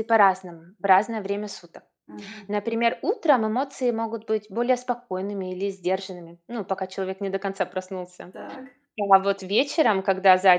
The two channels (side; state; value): both; identical; correlation 1.00